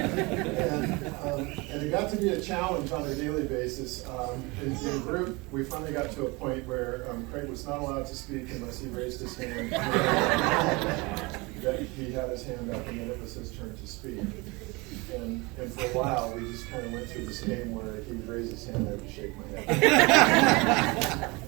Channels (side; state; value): left; quieter; 25.6 dB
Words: And it got to be a challenge on a daily basis. In group, we finally got to a point where Craig was not allowed to speak unless he raised his hand. That he had his hand up, and then it was his turn to speak. And for a while, we just kind of went through this game where he would raise his hand, I would shake my head.